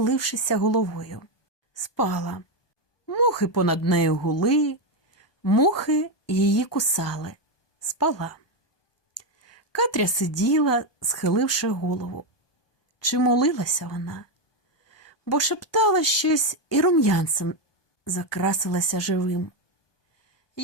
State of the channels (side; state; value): right; late; 1.2 ms